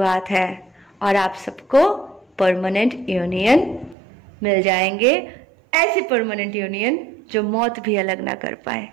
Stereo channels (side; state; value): left; drops out; at 4.0 s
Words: है और आप सबको परमानेंट यूनियन मिल जाएंगे। ऐसी परमानेंट यूनियन जो मौत भी अलग ना कर पाए।